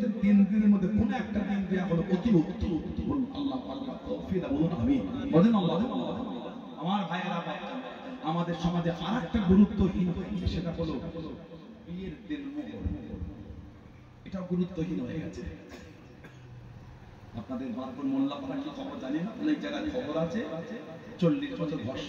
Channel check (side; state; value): both; identical; correlation 1.00